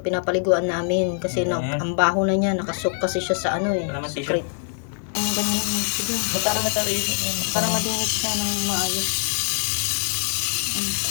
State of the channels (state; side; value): silent; right; 59 dB below the other